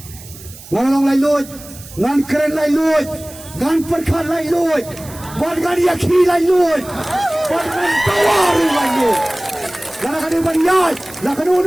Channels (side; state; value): right; noise; hiss, 18 dB below the sound